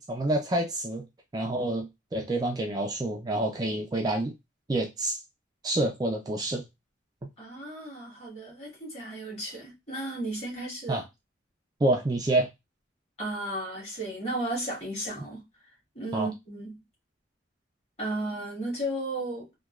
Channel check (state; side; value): normal; both; correlation 0.41